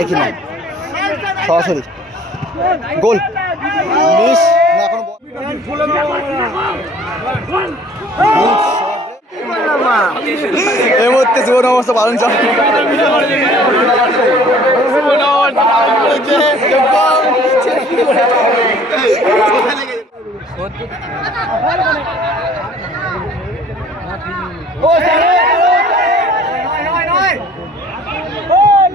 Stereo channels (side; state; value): both; normal; correlation 0.53